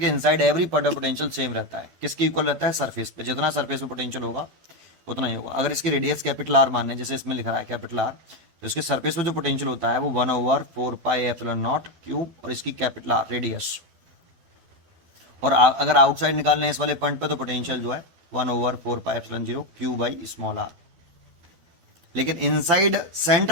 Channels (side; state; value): left; late; 12 ms